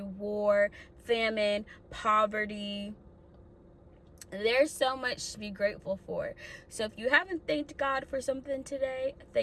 war, famine, poverty, there's so much to be grateful for. So if you haven't thanked God for something today,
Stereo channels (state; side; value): identical; both; correlation 1.00